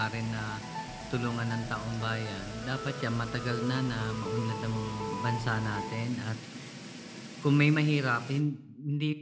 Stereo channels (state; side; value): identical; both; correlation 1.00